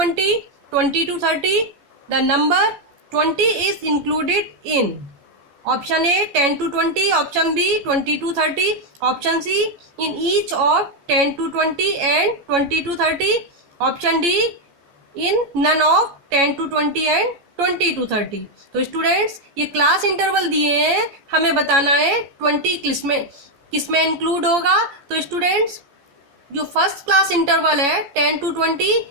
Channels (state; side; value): late; left; 14 ms